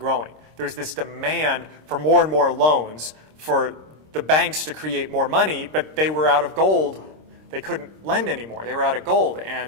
There's this demand for more and more loans for the banks to create more money, but they were out of gold. They couldn't lend anymore. They were out of gold.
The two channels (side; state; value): left; late; 26 ms